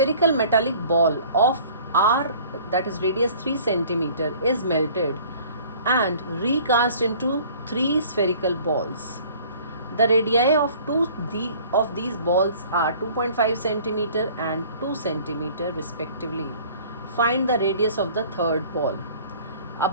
metallic ball of R, that is radius 3 centimeter, is melted and recast into 3 spherical balls. The radii of these balls are 2.5 centimeter and 2 centimeter respectively. Find the radius of the third ball. A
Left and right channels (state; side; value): inverted; both; correlation -0.50